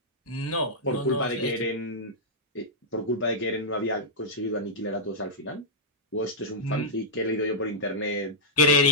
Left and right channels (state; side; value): normal; both; correlation -0.10